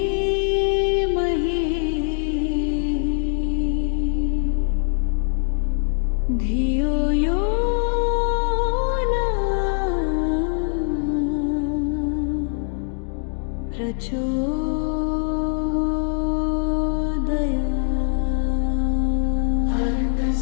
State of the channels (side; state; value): right; silent; digital silence